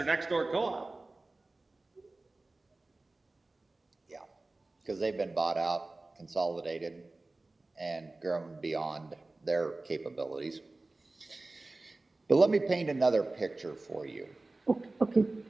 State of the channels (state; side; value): quieter; left; 3.1 dB